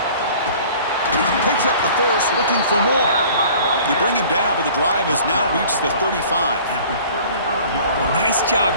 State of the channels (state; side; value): inverted; both; correlation -0.48